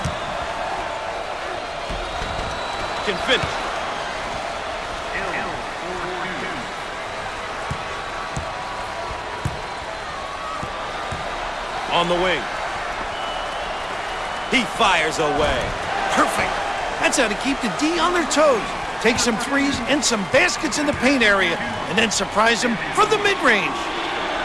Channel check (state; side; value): identical; both; correlation 1.00